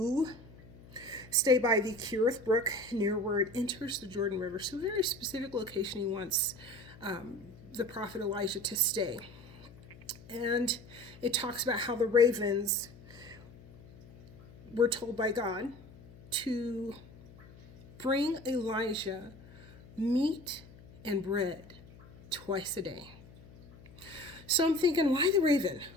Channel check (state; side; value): noise; left; hum, 21 dB below the sound